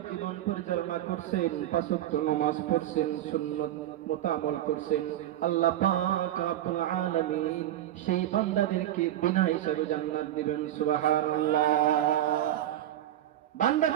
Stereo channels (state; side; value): quieter; left; 12.8 dB